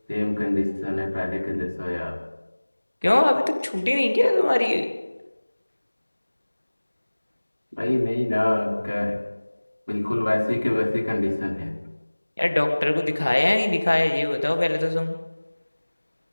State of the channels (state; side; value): inverted; both; correlation -1.00